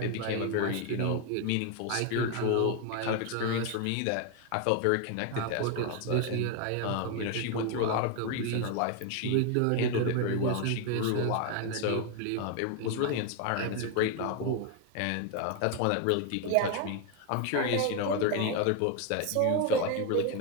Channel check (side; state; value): both; different; correlation 0.01